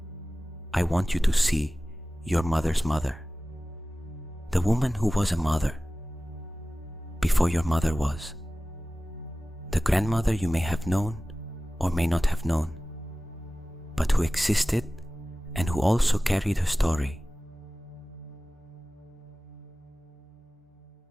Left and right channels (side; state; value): both; normal; correlation 0.97